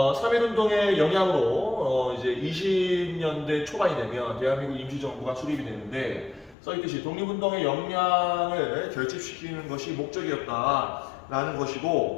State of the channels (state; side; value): drops out; right; at 6.6 s